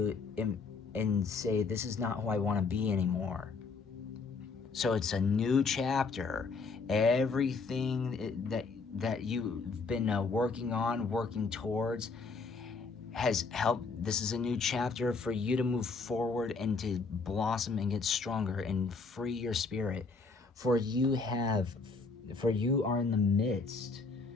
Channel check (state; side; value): quieter; right; 4.4 dB